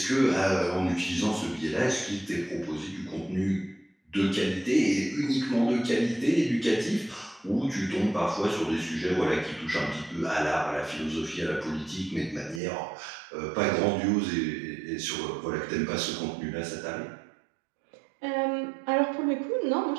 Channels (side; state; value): left; drops out; at 12.6 s